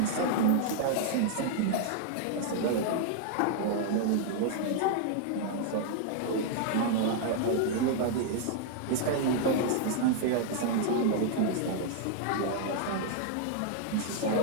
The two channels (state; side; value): different; both; correlation 0.00